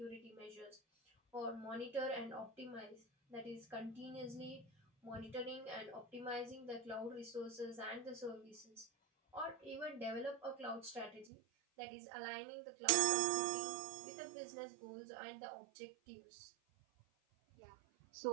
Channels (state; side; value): drops out; left; at 11.3 s